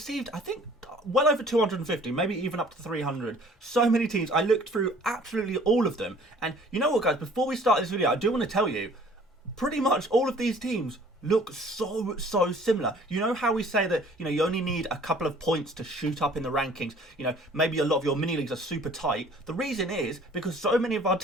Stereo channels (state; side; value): normal; both; correlation 0.53